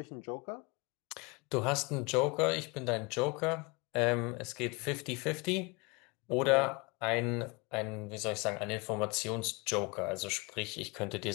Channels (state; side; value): quieter; right; 27.5 dB